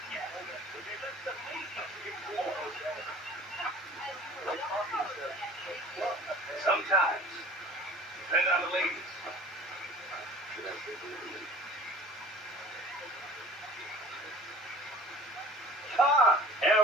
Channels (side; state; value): both; normal; correlation 0.46